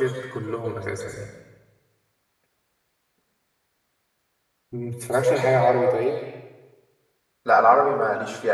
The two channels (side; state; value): both; identical; correlation 1.00